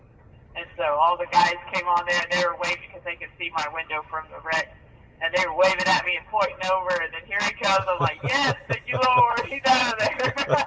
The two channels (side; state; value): both; identical; correlation 1.00